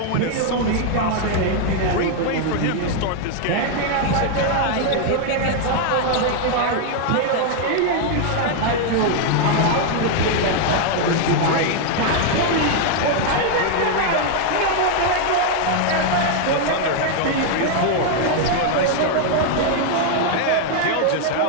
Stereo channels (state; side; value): different; both; correlation 0.00